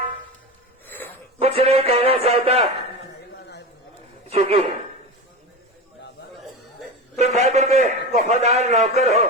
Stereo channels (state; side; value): normal; both; correlation 0.26